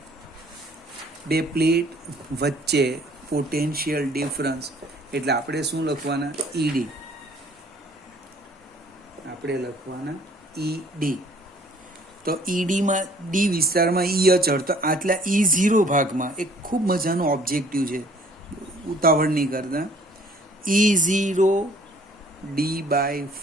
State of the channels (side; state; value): both; normal; correlation 0.57